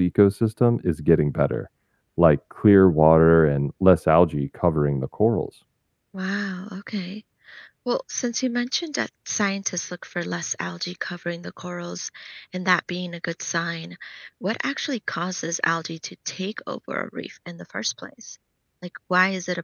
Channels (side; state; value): both; identical; correlation 1.00